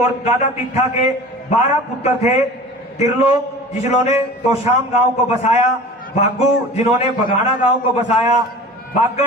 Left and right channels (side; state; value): both; normal; correlation 0.39